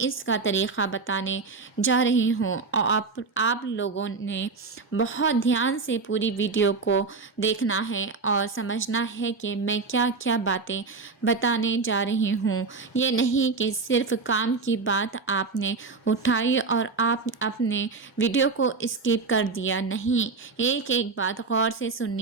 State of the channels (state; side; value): quieter; left; 4.3 dB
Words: کا طریقہ بتانے جا رہی ہوں، اور آپ لوگوں نے بہت دھیان سے پوری ویڈیو کو دیکھنا ہے اور سمجھنا ہے کہ میں کیا کیا باتیں بتانے جا رہی ہوں۔ یہ نہیں کہ صرف کام کی بات آپ نے اٹھائی اور آپ اپنے ویڈیو کو اسکپ کر دیا، نہیں، ایک ایک بات غور سے